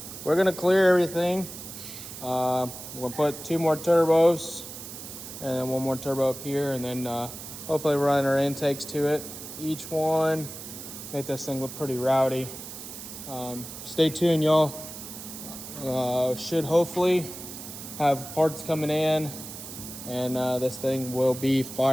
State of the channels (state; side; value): noise; right; hiss, 11 dB below the sound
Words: gonna clear everything. We'll put 2 more turbos and then 1 more turbo up here, and then hopefully run our intakes to it. Each one, make this thing look pretty rowdy. Stay tuned, y'all. Should hopefully have parts coming in, and this thing will be